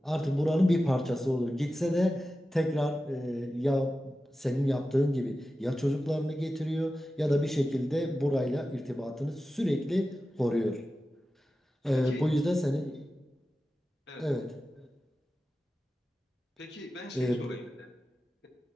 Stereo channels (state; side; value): normal; both; correlation 0.93